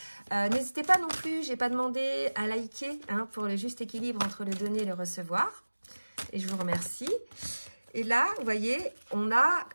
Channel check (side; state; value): both; inverted; correlation -1.00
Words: N'hésitez pas non plus, j'ai pas demandé à liker hein, pour le juste équilibre entre le donner et le recevoir. Et je vous remercie. Et là, vous voyez, on a